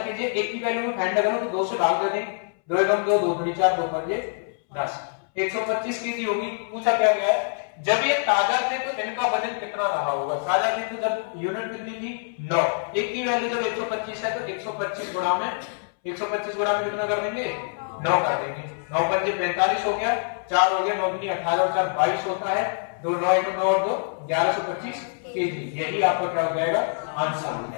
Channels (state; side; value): silent; right; 62 dB below the other